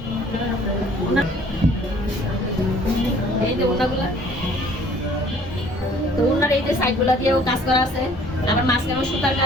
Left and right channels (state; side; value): normal; both; correlation 0.56